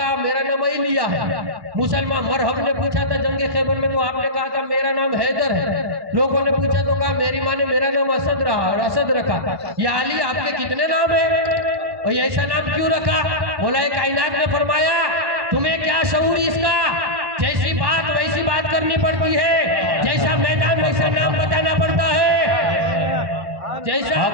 میرا نام ایلیا ہے، مسلمان مرحب نے پوچھا تھا جنگ خیبر میں تو آپ نے کہا تھا میرا نام حیدر ہے، لوگوں نے پوچھا تو کہا میری ماں نے میرا نام اسد رہا اور اسد رکھا۔ یا علی آپ کے کتنے نام ہیں اور یہ ایسا نام کیوں رکھا؟ مولا کائنات نے فرمایا تمہیں کیا شعور اس کا، جیسی بات ویسی بات کرنی پڑتی ہے، جیسا میدان ویسا نام بتانا پڑتا ہے، جیسا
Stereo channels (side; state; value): left; late; 1.1 ms